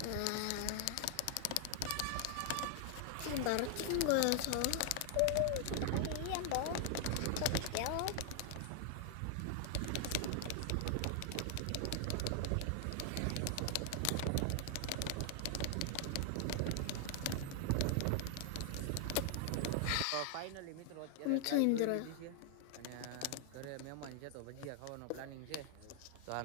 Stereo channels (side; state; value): both; different; correlation 0.00